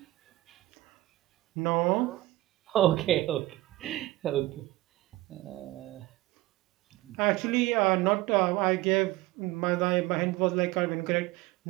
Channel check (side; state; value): left; quieter; 17.8 dB